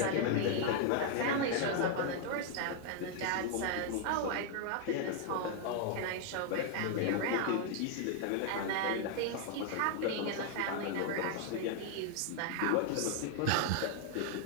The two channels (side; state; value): both; different; correlation 0.00